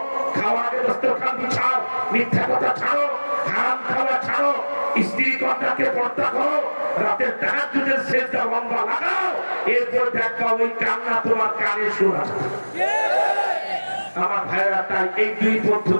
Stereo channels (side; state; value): both; inverted; correlation -1.00